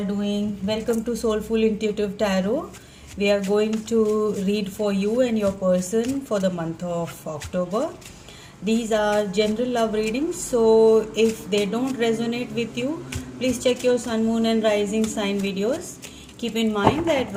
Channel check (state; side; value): identical; both; correlation 1.00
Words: doing? Welcome to Soulful Intuitive Tarot. We are going to read for you and your person for the month of October. These are general love readings, so if they don't resonate with you, please check your sun, moon, and rising sign videos. Keep in mind that